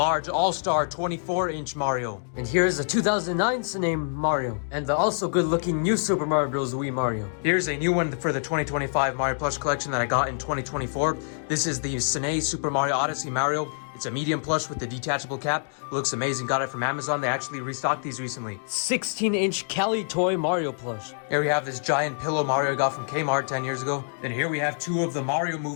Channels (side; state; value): right; silent; digital silence